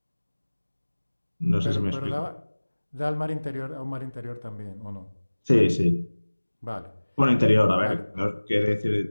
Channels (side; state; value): both; inverted; correlation -1.00